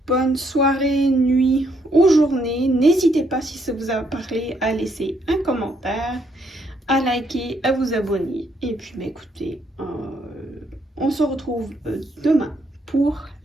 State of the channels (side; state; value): both; normal; correlation 0.72